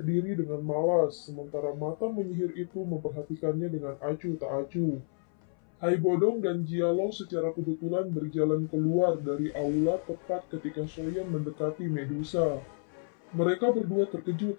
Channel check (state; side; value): silent; right; 57 dB below the other